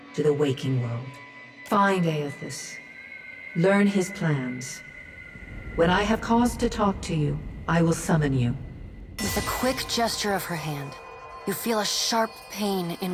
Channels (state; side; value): identical; both; correlation 1.00